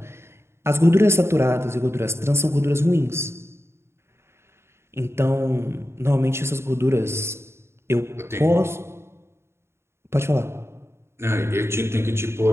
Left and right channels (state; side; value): late; left; 0.12 ms